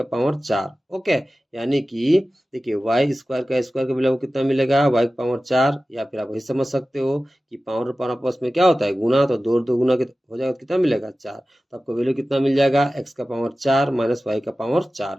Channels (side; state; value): both; normal; correlation 0.95